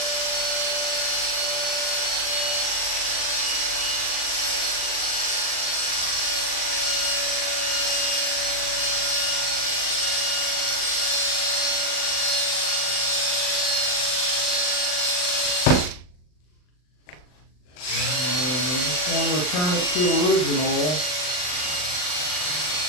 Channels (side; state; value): right; late; 39 ms